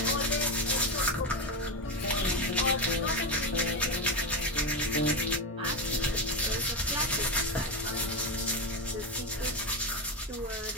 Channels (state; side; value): normal; both; correlation 0.14